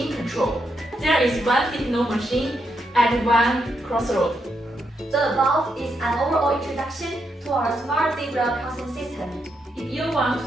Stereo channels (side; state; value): both; normal; correlation 0.81